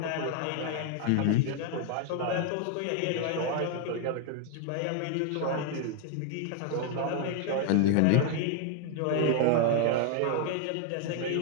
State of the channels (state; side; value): different; both; correlation 0.01